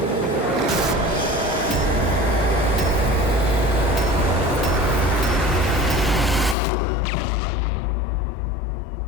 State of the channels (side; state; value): right; drops out; at 6.6 s